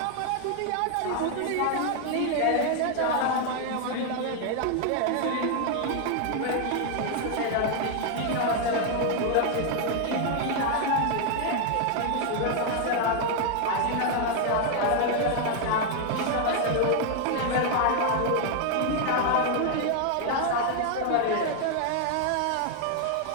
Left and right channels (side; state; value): both; different; correlation 0.00